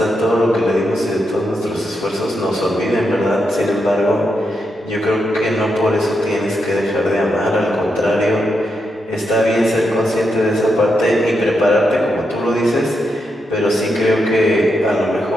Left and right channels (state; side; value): normal; both; correlation 0.84